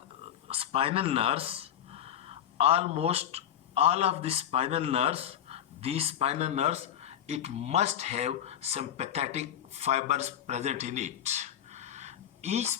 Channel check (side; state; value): right; quieter; 10.3 dB